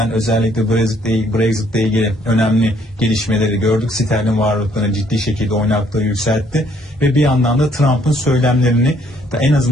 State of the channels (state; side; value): normal; both; correlation 0.65